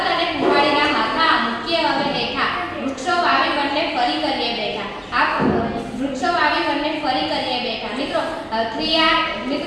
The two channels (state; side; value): identical; both; correlation 1.00